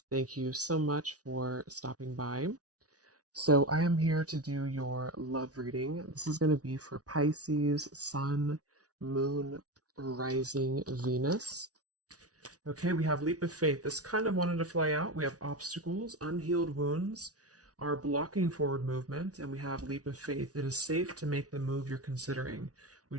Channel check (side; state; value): left; late; 0.68 ms